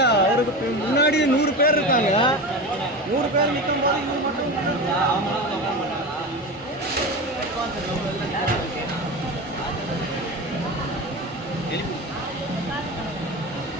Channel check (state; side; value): normal; both; correlation 0.26